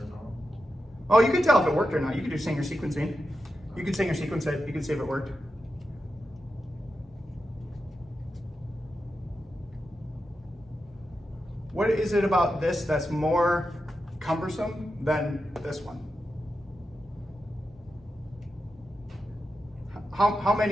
or not. Oh, you can tell if it worked or not. You can do Sanger sequencing. You can Sanger sequence it. You can see if it worked. What is it about this that's more cumbersome than this one? How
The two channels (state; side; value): normal; both; correlation 0.89